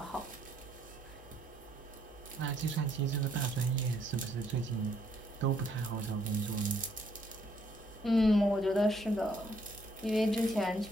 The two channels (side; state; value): both; normal; correlation 0.69